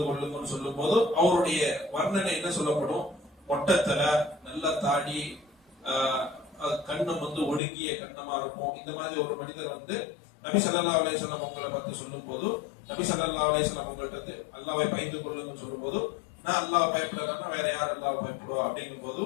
கொள்ளுங்கன்னு சொல்லும் போது அவருடைய வர்ணனை என்ன சொல்லப்படும்? மொட்டத்தல, நல்ல தாடி, கண்ணம் வந்து ஒடுங்கிய கண்ணமா இருக்கும். இந்த மாதிரி ஒரு மனிதர் வந்து நபி ஸல்லல்லாஹு அலைஹி வஸல்லம் உங்களை பார்த்து சொல்லும் போது, நபி ஸல்லல்லாஹு அலைஹி வஸல்லம் உங்கள்ட்ட வந்து அல்லாஹ்வை பயந்து கொள்ளுங்கன்னு சொல்லும் போது, நான் அல்லாஹ் பயப்படலன்னா வேற யார் அல்லாஹ் பயப்படுவா அப்படிங்கும் போது,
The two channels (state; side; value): drops out; right; at 7.6 s